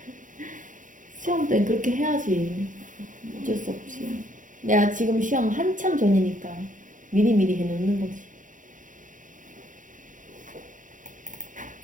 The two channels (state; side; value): late; left; 0.38 ms